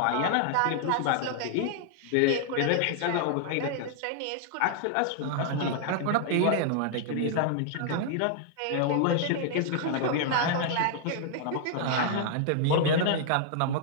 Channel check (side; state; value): both; different; correlation 0.00